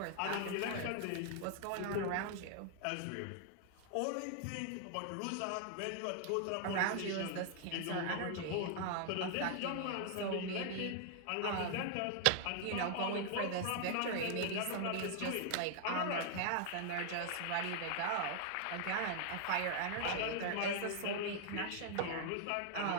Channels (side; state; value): both; different; correlation 0.00